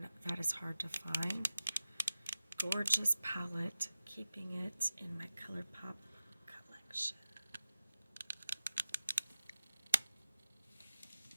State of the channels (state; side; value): inverted; both; correlation -0.93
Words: that is hard to find. Gorgeous palette, keeping it in my ColourPop collection.